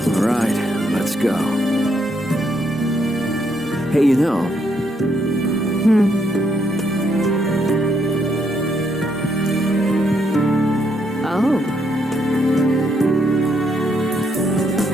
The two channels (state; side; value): normal; both; correlation 0.75